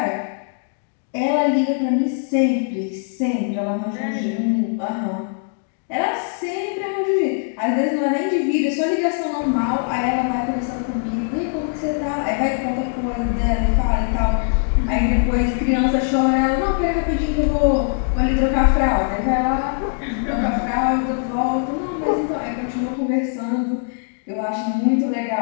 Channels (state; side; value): silent; right; digital silence